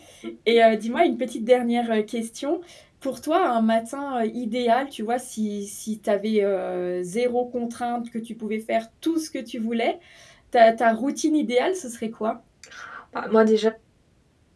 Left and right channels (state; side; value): identical; both; correlation 1.00